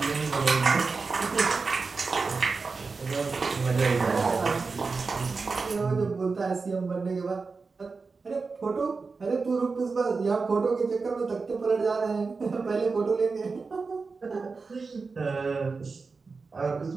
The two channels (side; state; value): left; quieter; 4.4 dB